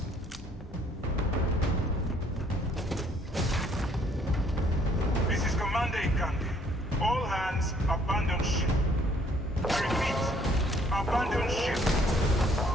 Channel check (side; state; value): both; normal; correlation 0.63